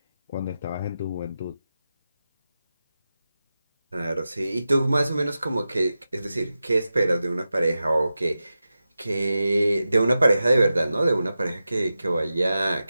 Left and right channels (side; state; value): both; inverted; correlation -0.92